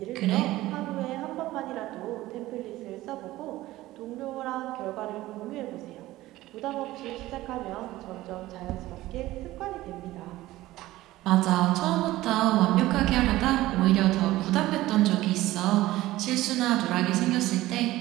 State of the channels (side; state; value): left; quieter; 16.8 dB